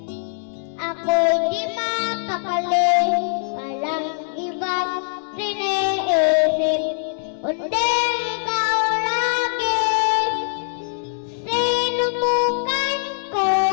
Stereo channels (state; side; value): silent; right; digital silence